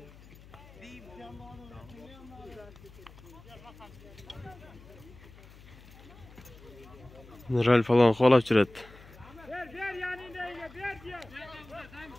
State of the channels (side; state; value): left; noise; hum, 21 dB below the sound